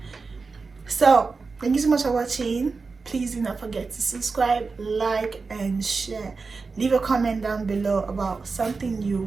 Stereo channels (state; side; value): quieter; left; 4.4 dB